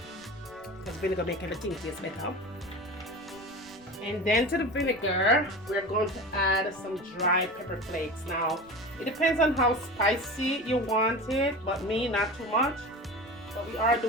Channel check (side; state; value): right; noise; rumble, 26 dB below the sound